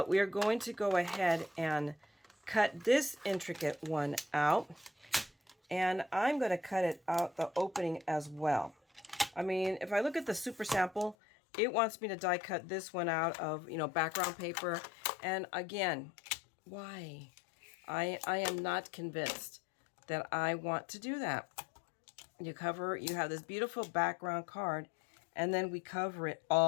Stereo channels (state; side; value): drops out; right; at 11.2 s